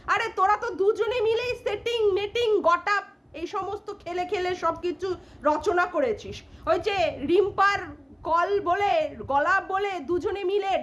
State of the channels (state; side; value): identical; both; correlation 1.00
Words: আরে তোরা তো দুজনে মিলেই সেটিং মেটিং গটাপ এই সমস্ত খেলে খেলে সব কিছু রচনা করেছিস। ওই যে রিম্পার কল বলে, গলা বলে, দুজনে মিলে